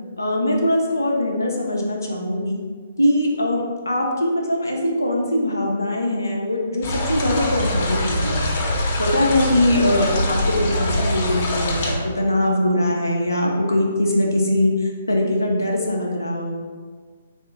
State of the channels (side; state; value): both; inverted; correlation -0.78